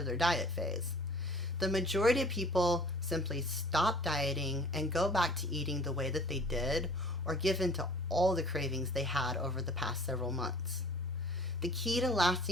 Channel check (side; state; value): both; normal; correlation 0.49